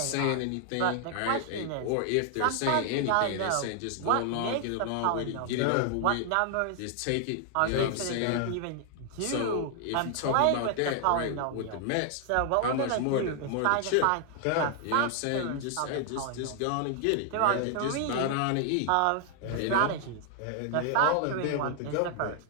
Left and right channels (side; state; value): both; different; correlation 0.00